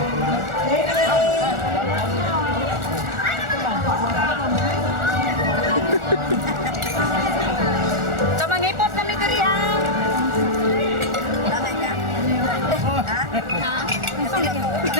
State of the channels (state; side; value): late; left; 1.4 ms